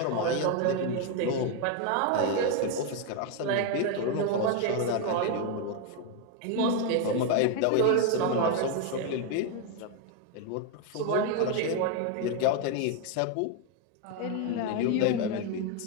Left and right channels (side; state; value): both; different; correlation 0.01